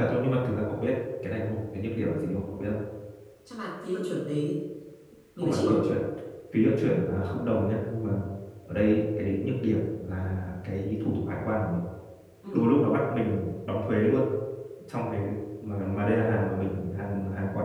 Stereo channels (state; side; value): identical; both; correlation 1.00